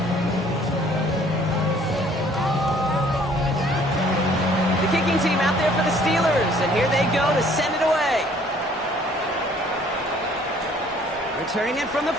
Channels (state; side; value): normal; both; correlation 0.58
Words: The kicking team out there for the Steelers, and here they go to send it away. Returning it from the